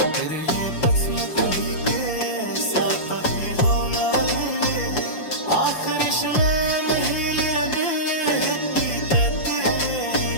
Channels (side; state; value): right; late; 6.2 ms